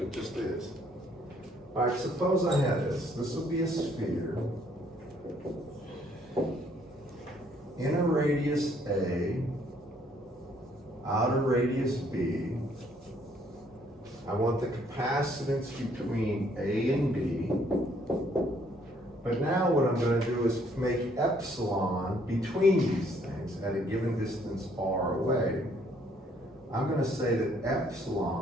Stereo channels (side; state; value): both; normal; correlation 0.65